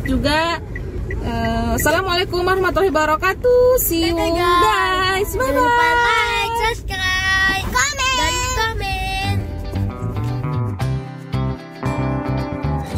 juga. Assalamualaikum warahmatullahi wabarakatuh. See you guys. Bye bye.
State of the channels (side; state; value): both; identical; correlation 1.00